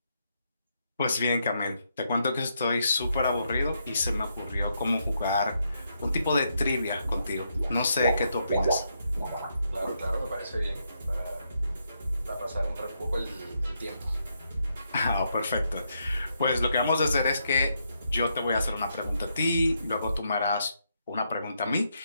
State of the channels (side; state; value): both; inverted; correlation -0.79